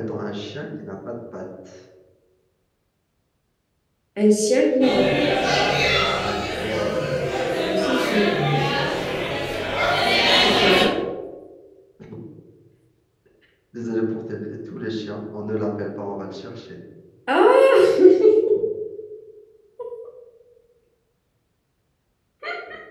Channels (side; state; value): both; identical; correlation 1.00